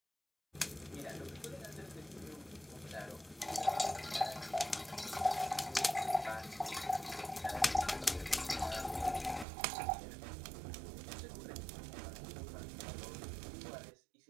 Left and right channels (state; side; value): drops out; left; at 9.5 s